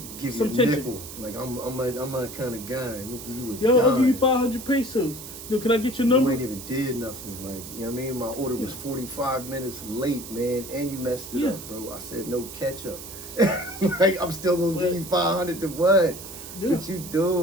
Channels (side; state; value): right; noise; hiss, 12 dB below the sound